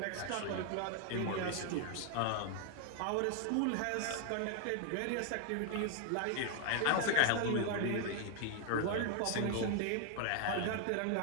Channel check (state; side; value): different; both; correlation 0.00